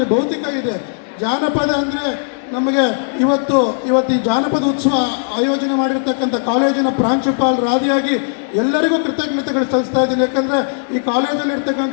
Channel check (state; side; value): silent; right; digital silence